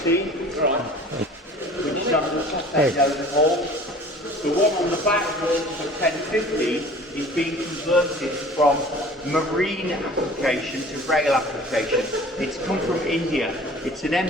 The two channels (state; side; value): normal; both; correlation 0.45